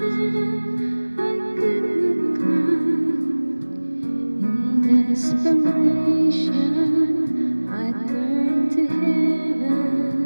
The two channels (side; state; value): both; inverted; correlation -1.00